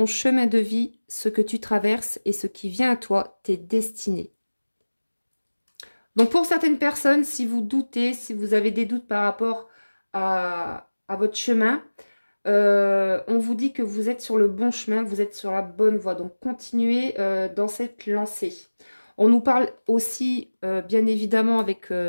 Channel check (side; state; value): both; inverted; correlation -1.00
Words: chemin de vie, ce que tu traverses et ce qui vient à toi, t'es destiné. Donc pour certaines personnes, si vous doutez, si vous avez des doutes par rapport à votre chemin, on vous dit que vous êtes sur le bon chemin, vous êtes sur la bonne voie. Donc continuez dans cette lancée. On nous parle aussi, bien évidemment, avec